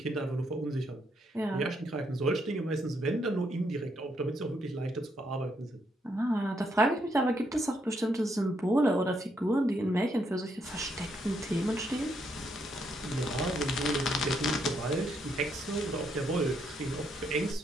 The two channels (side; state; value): both; normal; correlation 0.76